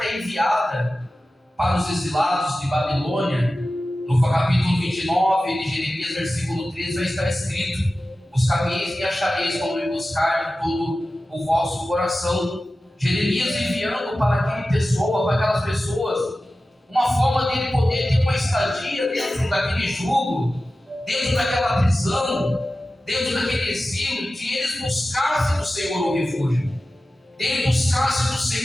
é enviada para os exilados de Babilônia, no capítulo 29 de Jeremias, versículo 13, vai estar escrito: buscareis e achareis quando me buscar de todo o vosso coração. Jeremias enviando para aquela pessoa, para aquelas pessoas, uma forma dele poder ter uma estadia dentro daquele jugo, dentro daquela prisão, dentro daquele exílio, que eles buscassem do Senhor um refúgio, dele buscasse do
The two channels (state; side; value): normal; both; correlation 0.95